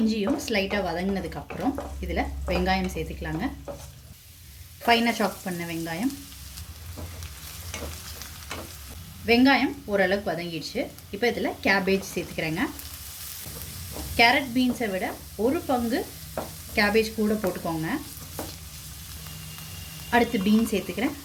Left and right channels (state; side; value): identical; both; correlation 1.00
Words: ஸ்லைட்டாக வதங்கினதுக்கப்புறம் இதில் வெங்காயம் சேர்த்துக்கலாங்க. ஃபைனாக சாப் பண்ண வெங்காயம் ஓரளவுக்கு வதங்கிடுச்சு. இப்போ இதில் கேபேஜ் சேர்த்துக்கிறேங்க. கேரட் பீன்ஸை விட ஒரு பங்கு கேபேஜ் கூட போட்டுக்கோங்க. அடுத்து பீன்ஸ் சேர்த்துக்கிறேன்.